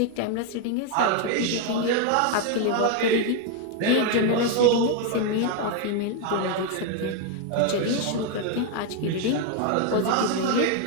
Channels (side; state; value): both; different; correlation 0.01